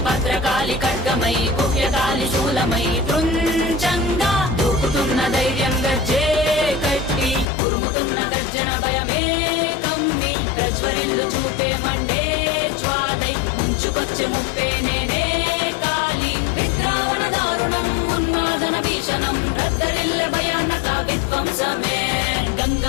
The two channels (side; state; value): right; drops out; at 7.5 s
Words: భద్రకాళి ఖడ్గమై గుహ్యకాళి శూలమై తృంచంగా దూకుతున్న ధైర్యం గర్జే కట్టి ఉరుముతున్న గర్జన భయమే కమ్మి ప్రజ్వరిల్లు చూపే మండే జ్వాలై ముంచుకొచ్చే ముప్పే నేనే కాళి. విద్రావణ దారుణం ఉన్మాదన భీషణం రద్దరిల్లె భయానక విధ్వంసమే.